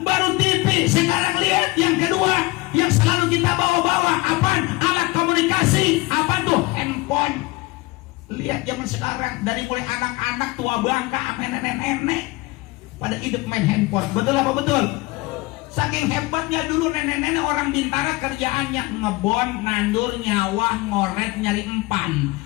Baru TV, sekarang lihat yang kedua yang selalu kita bawa-bawa. Apaan? Alat komunikasi. Apa tuh? Handphone. Lihat zaman sekarang dari mulai anak-anak tua bangka sampai nenek-nenek pada hidup main handphone. Betul apa betul? Saking hebatnya dulu nenek-nenek orang Bintara kerjaannya ngebon, nandur, nyawah, ngoret, nyari empan.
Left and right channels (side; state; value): right; quieter; 22.2 dB